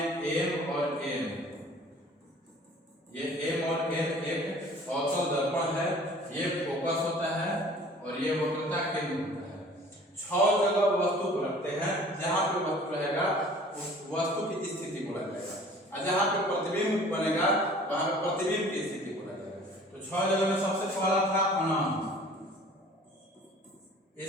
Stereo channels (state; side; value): normal; both; correlation 0.49